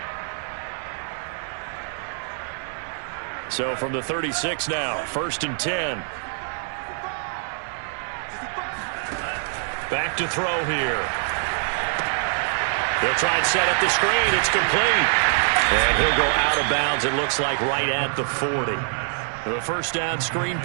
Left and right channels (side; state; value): left; silent; digital silence